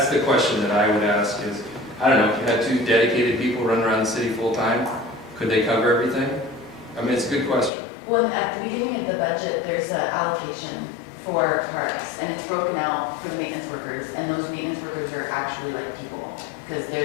the question that I would ask is, I don't know, if you had 2 dedicated people running around the city full time, could they cover everything? It's a good question. Well, at the beginning of the budget, there's an allocation for parks, and it's broken out for the maintenance workers, and those maintenance workers are actually like people, because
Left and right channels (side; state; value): right; drops out; at 7.7 s